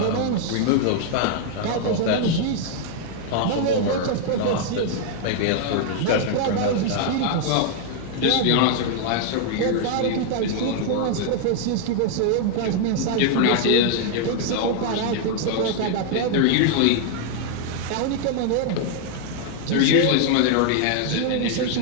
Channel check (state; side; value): different; both; correlation 0.00